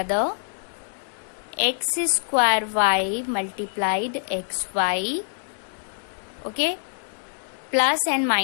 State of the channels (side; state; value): right; silent; digital silence